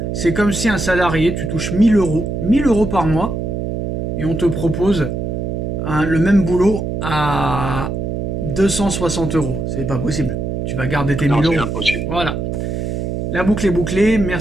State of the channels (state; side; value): noise; right; hum, 3 dB below the sound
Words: C'est comme si un salarié, tu touches 1000 euros, 1000 euros par mois, et on te propose le même boulot à 260 euros. C'est pas possible. Tu vas garder tes Non, 1000 c'est euros. impossible. Voilà. La boucle est bouclée.